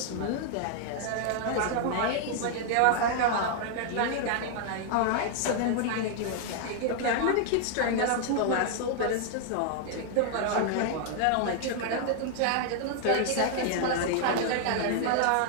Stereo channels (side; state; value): both; different; correlation 0.00